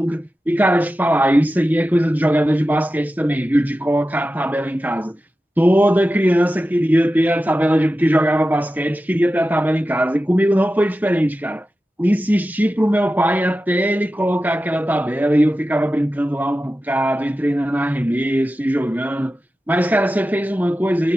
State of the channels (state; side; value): normal; both; correlation 0.93